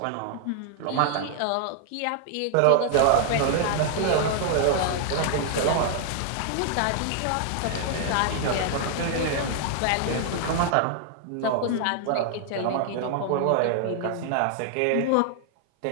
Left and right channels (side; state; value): both; different; correlation 0.00